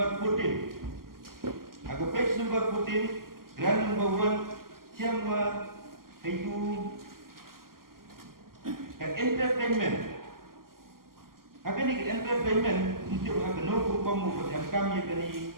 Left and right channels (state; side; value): late; left; 0.92 ms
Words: 14. Ke page number 14, grant number 1, siapa itu entertainment. Akan ni entertainment untuk akan nombor kamu kami kini